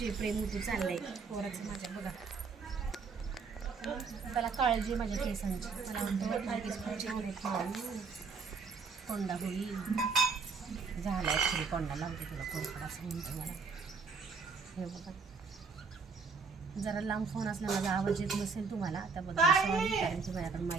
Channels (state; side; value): quieter; left; 4.8 dB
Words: प्रेम होती चाललंय पोराचं माझ्या बघा. त्याला काळजी माझ्या केसांची. मला म्हणतो केस पुढचे होत माऊ कोंडा होईल झाला ॲक्च्युली कोंडा लावते तुला कोरफड असं म्हणतो मला. हे बघा जरा लांब फोन असला माझा आवाज येत नसेल तुम्हाला त्याबद्दल सॉरी कारण की माझ्याकडे